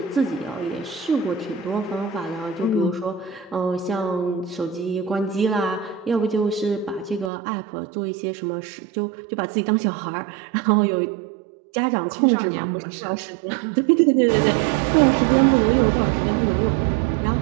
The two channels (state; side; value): drops out; left; at 7.3 s